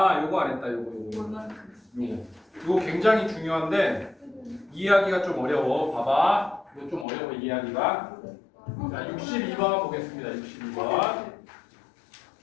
안 했다. 요거. 요거 굉장히 중요한데 이해하기가 좀 어려워. 봐봐. 이거 좀 어려워 이해하기가. 자, 62번 보겠습니다. 62번.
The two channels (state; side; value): drops out; right; at 7.1 s